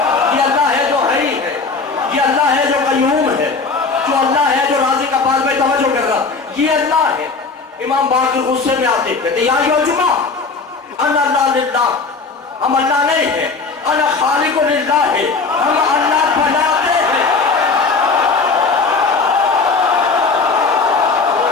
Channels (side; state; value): right; quieter; 4.4 dB